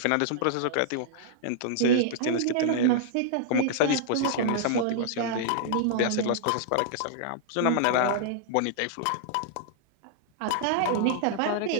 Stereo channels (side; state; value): both; different; correlation -0.01